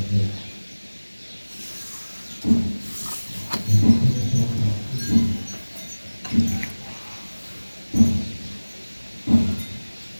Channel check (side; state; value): both; inverted; correlation -1.00